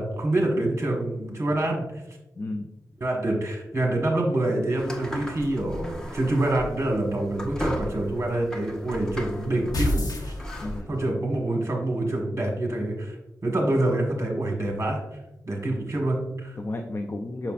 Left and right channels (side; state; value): both; normal; correlation 0.89